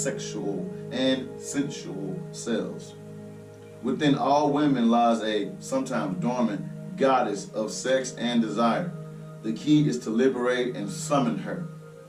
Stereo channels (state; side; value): identical; both; correlation 1.00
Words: and sensual selves. Within all women lies a sometimes dormant goddess of sex and desire. The key is to liberate and summon her,